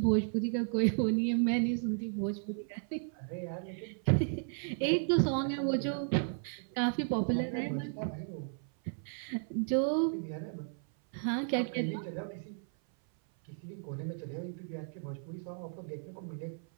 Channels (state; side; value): silent; left; 55 dB below the other